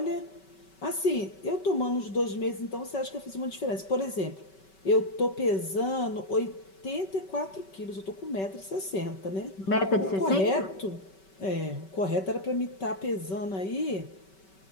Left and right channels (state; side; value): late; right; 5.2 ms